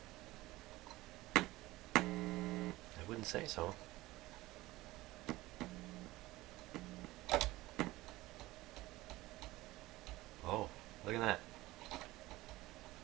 I wouldn't say so. Oh, look at that.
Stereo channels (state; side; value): quieter; left; 18.6 dB